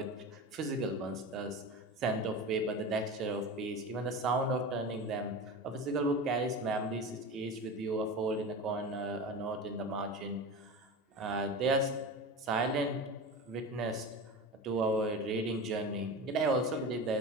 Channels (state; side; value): normal; both; correlation 0.29